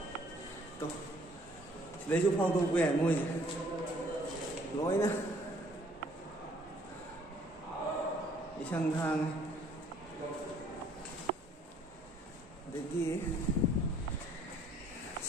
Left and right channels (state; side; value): normal; both; correlation 0.60